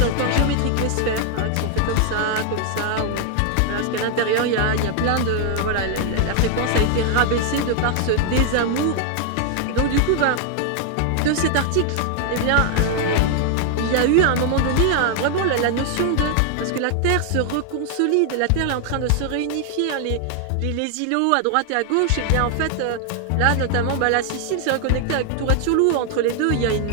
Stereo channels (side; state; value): both; different; correlation 0.00